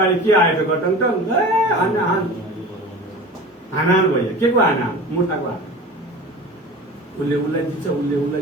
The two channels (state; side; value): normal; both; correlation 0.37